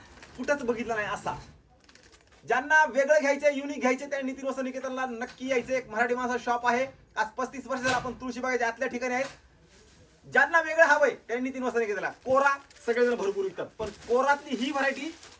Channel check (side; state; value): both; identical; correlation 1.00